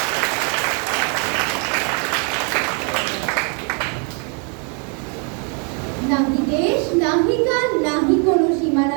নাহি দেশ, নাহি কাল, নাহি কোনো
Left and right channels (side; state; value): left; quieter; 38.0 dB